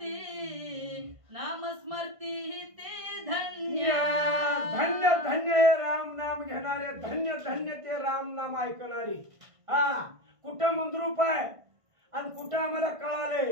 नाम स्मरती ते धन्य. धन्य धन्य हे राम नाम घेणारे, धन्य धन्य ते राम नाम ऐकणारी. हा कुठं मंद्रूप आहे आणि कुठं आम्हाला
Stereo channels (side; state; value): left; late; 1.5 ms